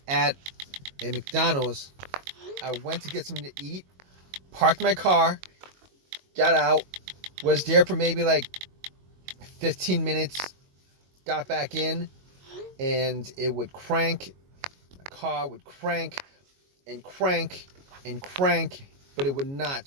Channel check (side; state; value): left; late; 22 ms